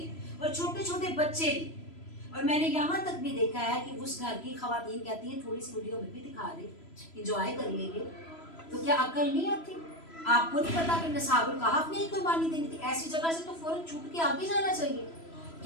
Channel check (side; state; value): right; late; 3.0 ms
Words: और छोटे छोटे बच्चे भी। और मैंने यहाँ तक भी देखा है कि उस घर की खवातीन कहती हैं थोड़ी सी वीडियो में भी दिखा दे, इंजॉय कर लेंगे। तो क्या अकल नहीं आती? आपको नहीं पता कि नसाबुल कहफ ने ही कुर्बानी देनी थी? ऐसी जगह से तो फौरन छूट के आगे जाना चाहिए।